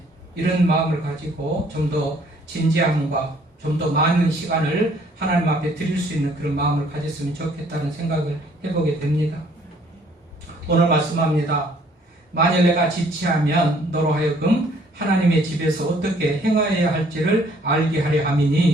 이런 마음을 가지고 좀 더 진지함과 좀 더 많은 시간을 하나님 앞에 드릴 수 있는 그런 마음을 가졌으면 좋겠다는 생각을 해보게 됩니다. 오늘 말씀합니다. 만일 내가 지체하면 너로 하여금 하나님의 집에서 어떻게 행하여야 할지를 알게 하려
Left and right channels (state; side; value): normal; both; correlation 0.61